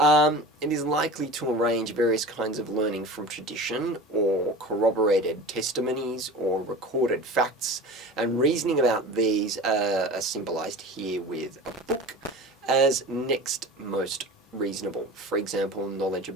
It is likely to arrange various kinds of learning from tradition or corroborated testimonies or recorded facts, and reasoning about these are symbolized here with a book as next most reasonable. For example, knowledge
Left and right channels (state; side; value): normal; both; correlation 0.36